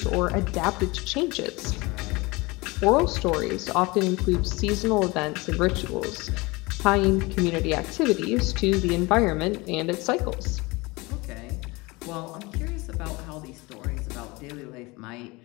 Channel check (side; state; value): right; quieter; 23.9 dB